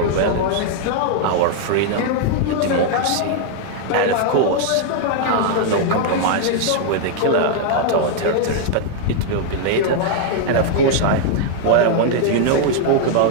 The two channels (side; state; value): both; different; correlation 0.00